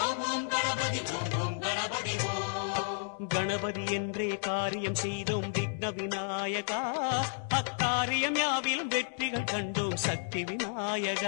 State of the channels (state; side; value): silent; right; 56 dB below the other